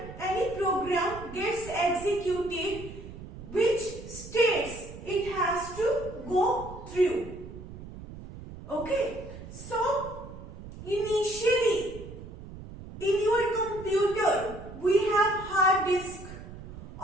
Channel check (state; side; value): noise; right; rumble, 13 dB below the sound